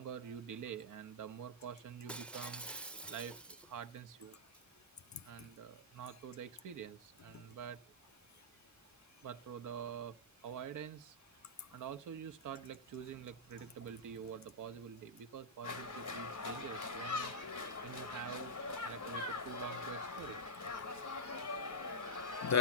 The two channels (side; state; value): both; normal; correlation -0.14